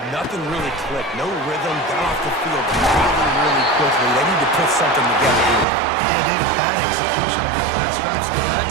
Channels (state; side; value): drops out; left; at 5.7 s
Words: nothing really clicked. No rhythm, got off the field really quickly. They need to put something together here. Yeah, David, bad execution on that last drive, so they got